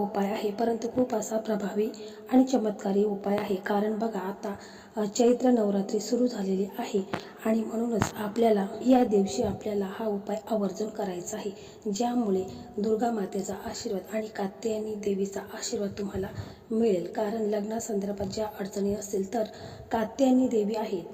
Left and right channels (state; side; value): identical; both; correlation 1.00